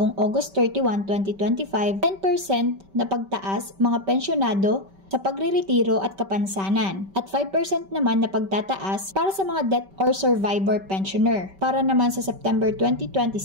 August 31, 2025, 10% na pagtaas mga pensyonado sa pagreretiro at kapansanan, at 5% naman na pagtataas para sa mga death or survivor pensioner. Para naman sa September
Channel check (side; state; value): left; late; 5.2 ms